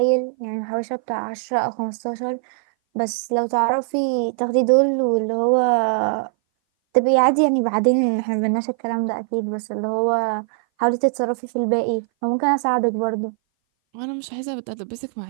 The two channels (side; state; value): left; silent; 59 dB below the other